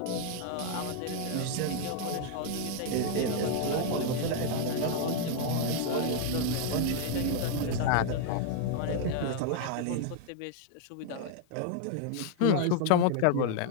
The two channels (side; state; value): both; different; correlation 0.00